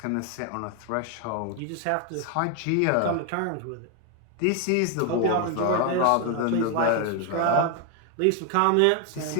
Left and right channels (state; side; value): different; both; correlation 0.01